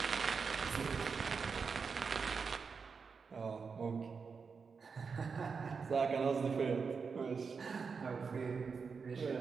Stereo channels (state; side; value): quieter; left; 5.4 dB